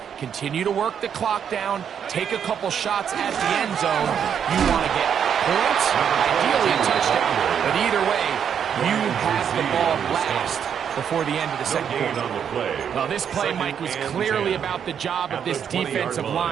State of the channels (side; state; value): left; quieter; 8.1 dB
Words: continue to work the clock down, take a couple shots at the end zone. You want to get points, ideally a touchdown, but either way, you have the ball last before the end of the second quarter. Well, this play, Mike, was clearly about the job of this defensive